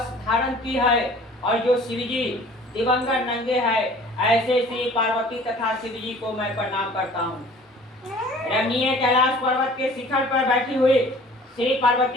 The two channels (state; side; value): normal; both; correlation 0.48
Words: धारण की है और जो शिव जी दिवंगत नंगे है, ऐसे श्री पार्वती तथा शिव जी को मैं प्रणाम करता हूँ। रमणीय कैलाश पर्वत के शिखर पर बैठी हुई श्री